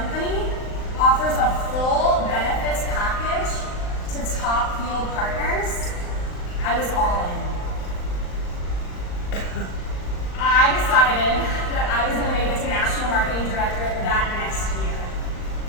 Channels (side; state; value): right; late; 39 ms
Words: offers a full benefits package to top field partners, I was all in. I decided that I was going to make it to National Marketing Director that next year.